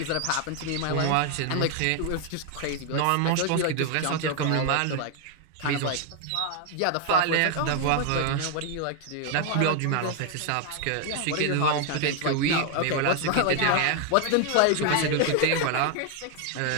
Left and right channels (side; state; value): both; different; correlation 0.00